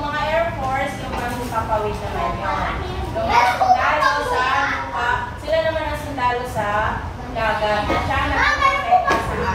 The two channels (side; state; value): both; identical; correlation 1.00